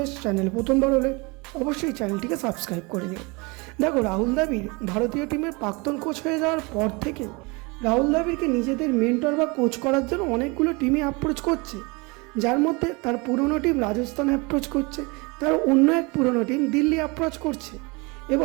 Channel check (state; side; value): quieter; left; 27.5 dB